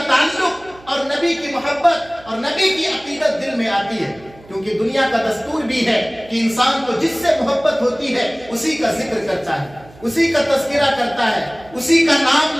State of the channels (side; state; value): right; noise; hum, 24 dB below the sound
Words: تعلق اور نبی کی محبت اور نبی کی عقیدت دل میں آتی ہے، کیونکہ دنیا کا دستور بھی ہے کہ انسان کو جس سے محبت ہوتی ہے اسی کا ذکر کرتا ہے، اسی کا تذکرہ کرتا ہے، اسی کا نام